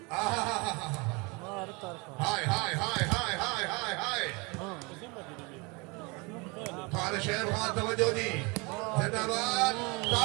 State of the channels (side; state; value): left; quieter; 28.5 dB